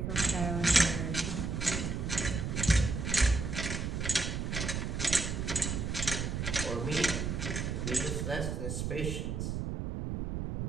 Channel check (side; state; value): right; noise; rumble, 2 dB below the sound